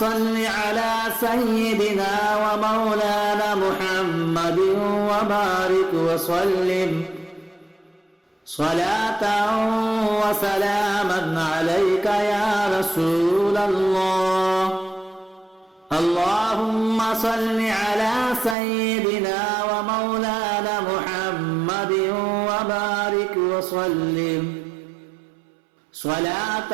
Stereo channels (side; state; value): left; drops out; at 18.6 s